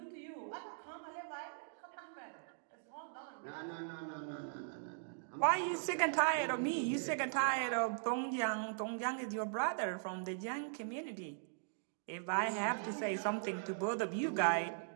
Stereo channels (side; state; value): left; silent; digital silence